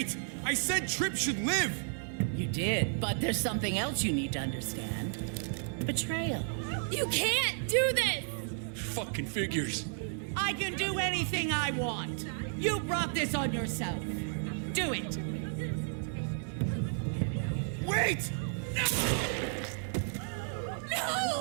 I said Tripp should live! You did, but there's something else you need to understand. Betrayal. You can't do this! Fucking figures. I can do anything I want. You brought this on yourself. Do it. Wait! No!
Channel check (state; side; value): silent; left; digital silence